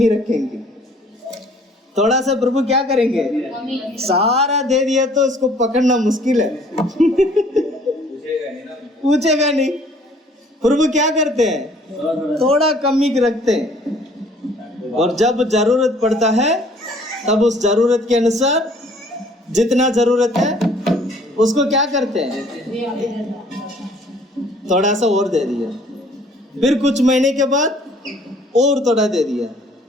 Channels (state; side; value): normal; both; correlation 0.57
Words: रखेंगे। थोड़ा सा प्रभु क्या करेंगे? सारा दे दिया तो इसको पकड़ना मुश्किल है। पूछेगा नहीं। प्रभु क्या करते हैं? थोड़ा कमी रखते हैं, और जब जरूरत पड़ता है तब उस जरूरत के अनुसार जितना जरूरत है उसको क्या करते हैं? थोड़ा सा और दे दिया, फिर कुछ महीने के बाद और थोड़ा दे दिया,